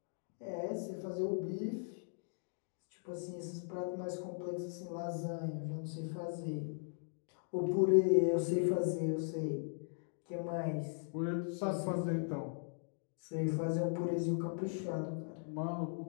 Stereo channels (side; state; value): right; silent; digital silence